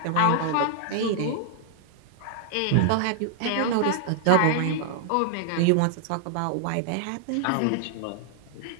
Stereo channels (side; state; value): both; different; correlation 0.00